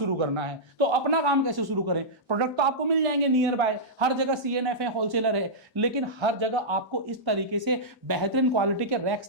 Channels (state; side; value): normal; both; correlation -0.12